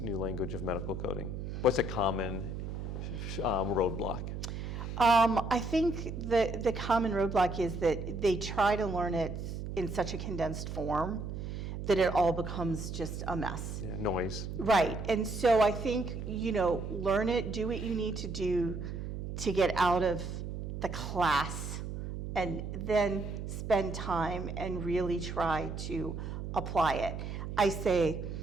new language of medical coding? What's a common roadblock? I think the common roadblock is that they try to learn it in such a condensed form that it all becomes just a mess. Yeah, noise. Right, and so I think, learn it, do what you need to do to get out of the class, and then spend time and really try to apply it. I say,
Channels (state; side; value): noise; right; hum, 6 dB below the sound